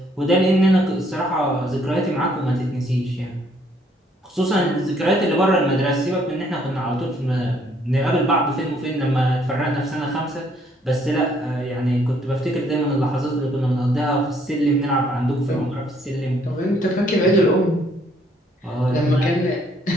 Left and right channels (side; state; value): both; normal; correlation 0.66